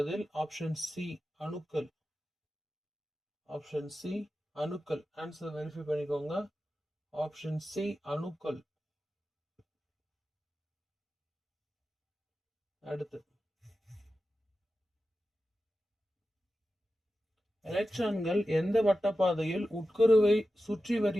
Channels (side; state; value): both; normal; correlation 0.93